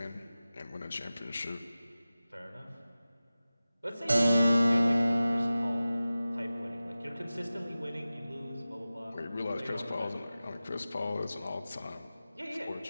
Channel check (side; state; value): both; inverted; correlation -0.96